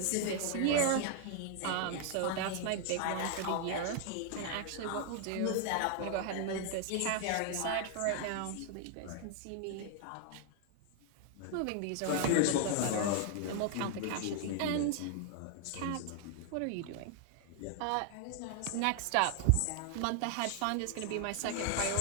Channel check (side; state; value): both; different; correlation 0.00